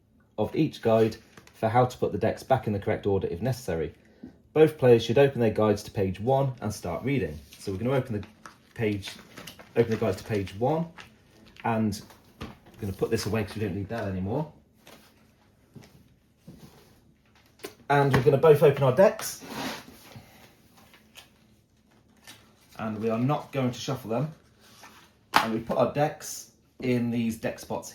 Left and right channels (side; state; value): both; identical; correlation 1.00